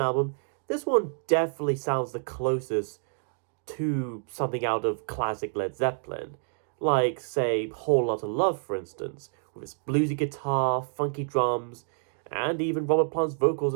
album, this one definitely sounds the closest to something out of classic Led Zeppelin. Like, say, Whole Lotta Love, for instance, with its bluesy guitar, funky drums, and even Robert Plant's vocals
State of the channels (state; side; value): silent; left; 59 dB below the other